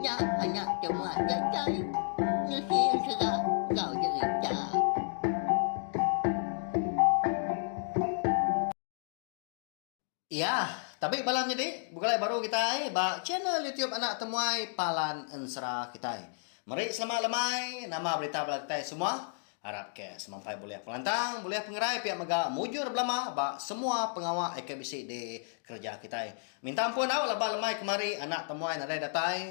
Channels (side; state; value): right; silent; digital silence